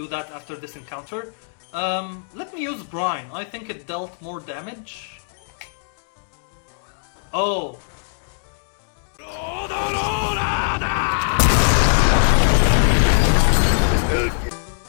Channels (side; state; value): right; silent; digital silence